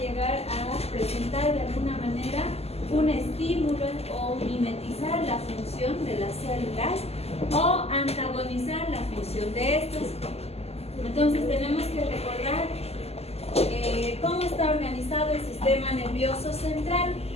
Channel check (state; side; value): late; right; 0.29 ms